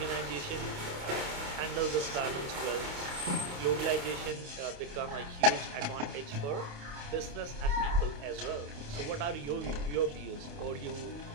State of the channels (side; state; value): left; late; 28 ms